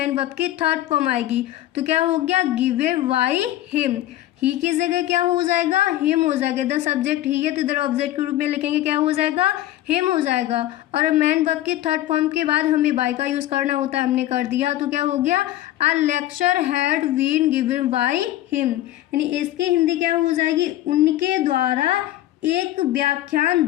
वर्ब की थर्ड फॉर्म आएगी। तो क्या हो गया, गिवन बाय हिम, ही की जगह क्या हो जाएगा, हिम हो जाएगा। इधर सब्जेक्ट ही है तो इधर ऑब्जेक्ट के रूप में लिखेंगे, क्या हो जाएगा, हिम हो जाएगा। और मैन वर्ब की थर्ड फॉर्म के बाद हमें बाय का यूज करना होता है, हमने कर दिया। तो क्या हो गया, a lecture had been given by him, यानी इसकी हिंदी क्या हो जाएगी, उनके द्वारा एक व्याख्यान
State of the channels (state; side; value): quieter; right; 14.4 dB